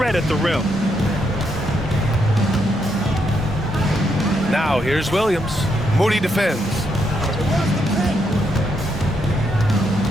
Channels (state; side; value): normal; both; correlation 0.78